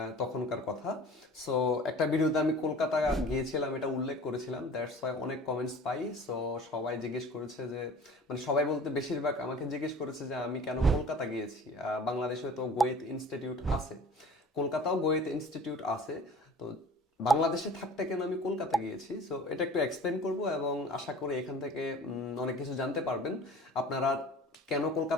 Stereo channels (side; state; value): both; normal; correlation 0.44